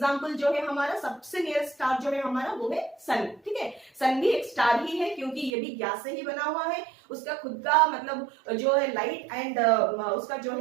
जो है हमारा सबसे नियरेस्ट स्टार जो है हमारा वो है सन, ठीक है। सन भी एक स्टार ही है क्योंकि ये भी गैस से ही बना हुआ है, उसका खुद का मतलब जो है लाइट एंड उसका जो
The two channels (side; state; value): left; drops out; at 5.5 s